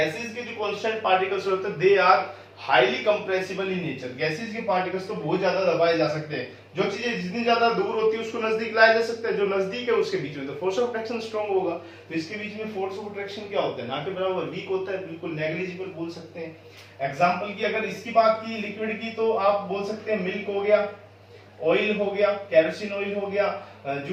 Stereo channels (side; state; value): both; identical; correlation 1.00